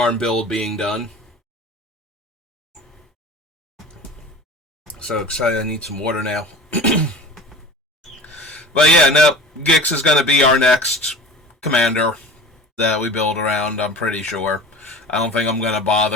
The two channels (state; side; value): normal; both; correlation 0.37